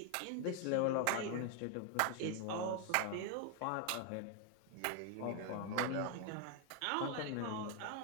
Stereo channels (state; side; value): different; both; correlation 0.01